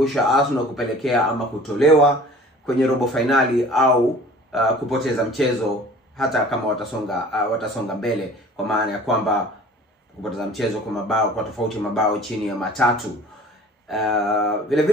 Arsenal kupelekea ama kutolewa kwenye robo finali au kupoteza mchezo hata kama watasonga mbele, kwa maana ya kwamba kupoteza mchezo kwa tofauti mabao chini ya 3. Vile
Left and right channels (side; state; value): both; normal; correlation 0.46